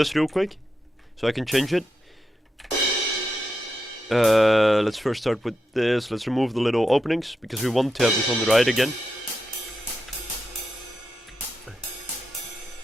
real quick, so I can change it. Let's first start with this. Let's remove the little openings, because we want to have this on the right again.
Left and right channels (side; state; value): both; normal; correlation 0.87